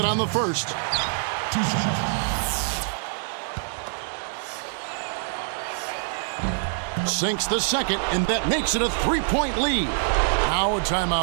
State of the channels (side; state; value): left; silent; digital silence